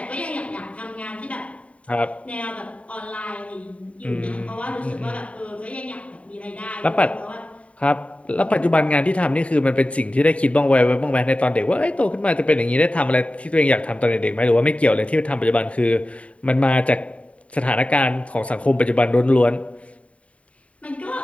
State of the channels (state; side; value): late; right; 0.065 ms